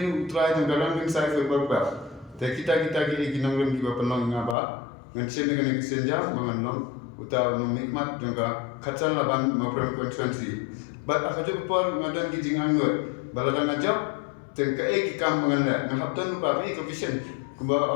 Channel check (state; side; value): drops out; right; at 4.5 s